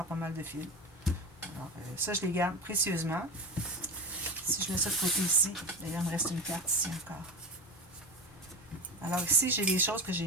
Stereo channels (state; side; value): normal; both; correlation 0.24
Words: pas mal de fils. Alors, ça, je les garde précieusement. Si je mets ça de côté ici, d'ailleurs, il me reste une carte ici encore. Alors, ici, j'ai des choses que